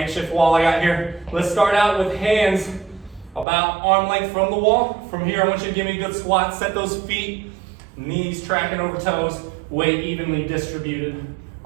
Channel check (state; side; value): drops out; left; at 3.5 s